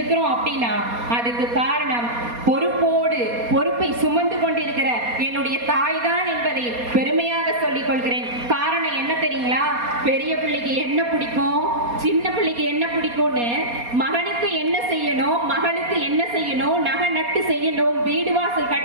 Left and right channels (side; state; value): left; late; 4.2 ms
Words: அப்படின்னா அதுக்கு காரணம் பொறுப்போடு, பொறுப்பை சுமந்து கொண்டிருக்கிற என்னுடைய தாய் தான் என்பதை பெருமையாக சொல்லிக் கொள்கிறேன். காரணம் என்ன தெரியுங்களா? பெரிய பிள்ளைக்கு என்ன பிடிக்கும், சின்ன பிள்ளைக்கு என்ன பிடிக்கும்னு, மகனுக்கு என்ன செய்யணும், மகளுக்கு என்ன செய்யணும், நகை நட்டு செய்யணும், வீடு வாசல்